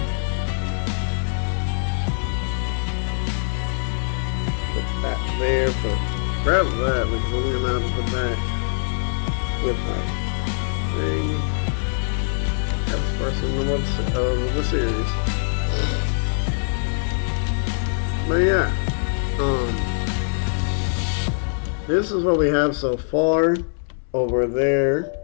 Put that there, grab that because I'm gonna have to put that with my thing. That's the first one of the series. But yeah, this is what we have so far. Over there.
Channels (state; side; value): silent; right; digital silence